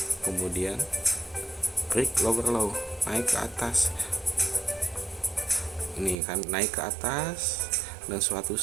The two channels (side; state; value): left; drops out; at 6.2 s